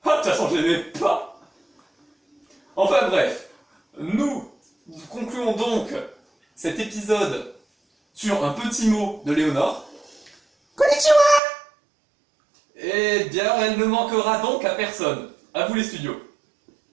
Ah, de toute façon, je n'aimais pas. Enfin bref, nous concluons donc cet épisode sur un petit mot de Léonore. Konnichiwa. Eh bien, elle ne manquera donc à personne. À vous les studios.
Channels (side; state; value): left; drops out; at 11.4 s